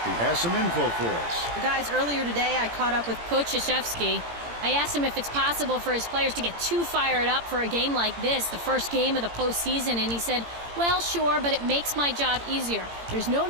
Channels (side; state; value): left; late; 17 ms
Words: who has some info for us. Guys, earlier today I caught up with Coach Krzyzewski. I asked him if it's possible for his players to get too fired up for a game like this, the first game of the postseason, and he said, well, sure, but it makes my job easier. There's no